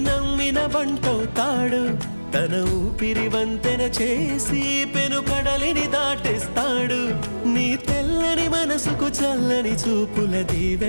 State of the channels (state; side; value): inverted; both; correlation -1.00